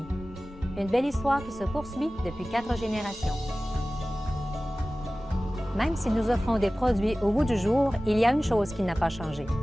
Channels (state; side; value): normal; both; correlation 0.97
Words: Une belle histoire qui se poursuit depuis 4 générations. Même si nous offrons des produits au goût du jour, il y a une chose qui n'a pas changé.